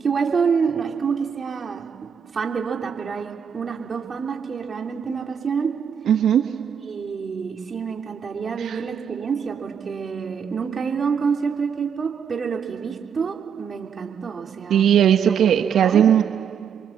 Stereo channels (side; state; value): left; quieter; 7.5 dB